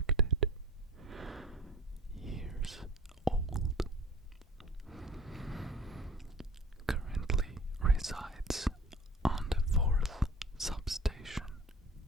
years old, currently resides on the fourth substation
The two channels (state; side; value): normal; both; correlation 0.43